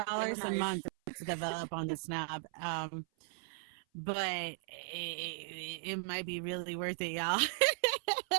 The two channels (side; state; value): left; silent; 53 dB below the other